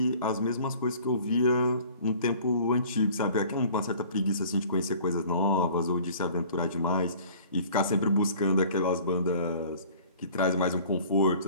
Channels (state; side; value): inverted; both; correlation -0.49